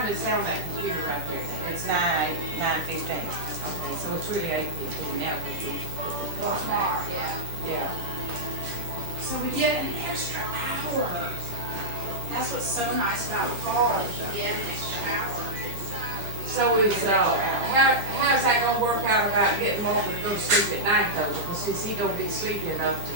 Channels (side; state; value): left; late; 10 ms